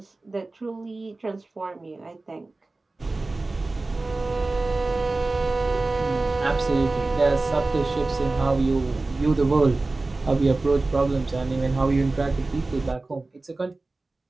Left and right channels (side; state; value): left; quieter; 3.3 dB